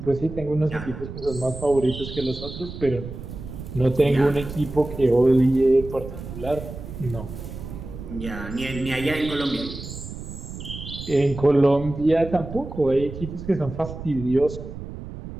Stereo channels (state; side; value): noise; right; rumble, 10 dB below the sound